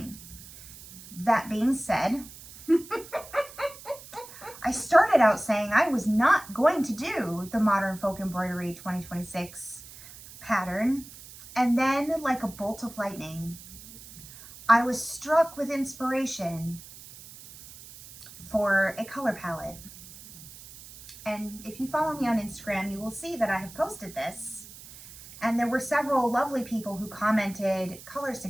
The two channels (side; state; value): right; noise; hiss, 17 dB below the sound